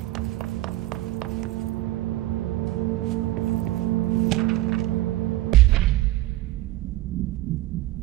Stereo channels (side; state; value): left; quieter; 16.5 dB